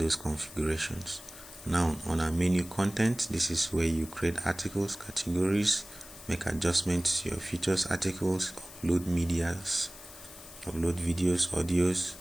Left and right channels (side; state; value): left; noise; hiss, 16 dB below the sound